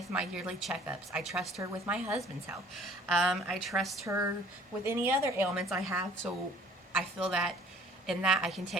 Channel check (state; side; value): normal; both; correlation 0.53